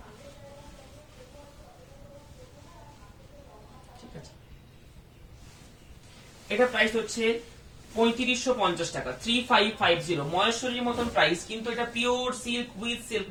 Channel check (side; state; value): both; identical; correlation 1.00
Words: ঠিক আছে, এটা প্রাইস হচ্ছে 3550 টাকা, 3550, মহেশ্বরীর মতন প্রাইস, কিন্তু এটা pure silk with silk